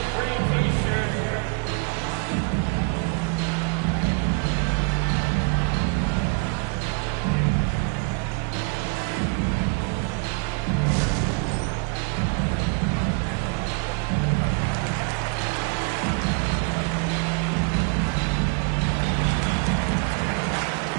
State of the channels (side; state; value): left; quieter; 33.7 dB